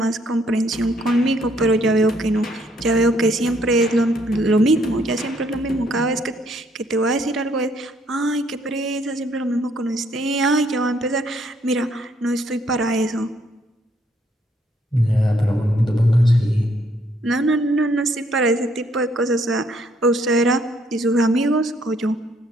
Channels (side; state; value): both; normal; correlation 0.68